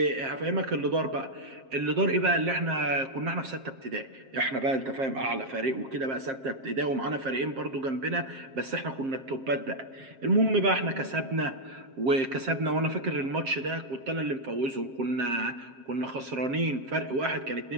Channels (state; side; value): late; left; 7.5 ms